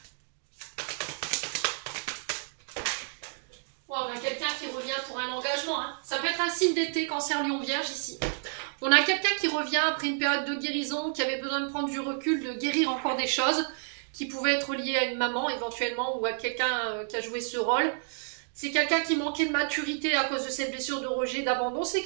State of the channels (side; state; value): left; silent; digital silence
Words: On a quelqu'un qui revient pour un engagement. Hein. Ça peut être un signe d'été, Cancer, Lion, Vierge ici. On a quelqu'un qui revient après une période de guérison, qui avait besoin de prendre du recul, de guérir encore des choses, qui pouvaient être liées à une maman éventuellement ou à quelqu'un qui a joué ce rôle. C'est quelqu'un qui manquait de maturité à cause de cette blessure de rejet, d'abandon. C'est